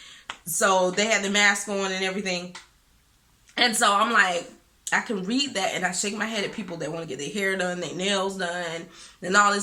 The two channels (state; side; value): identical; both; correlation 1.00